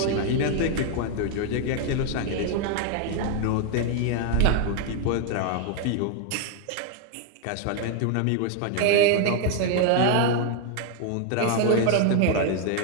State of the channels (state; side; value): different; both; correlation 0.01